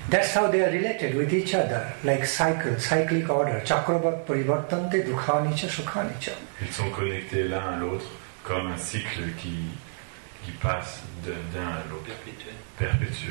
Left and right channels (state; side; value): silent; left; 60 dB below the other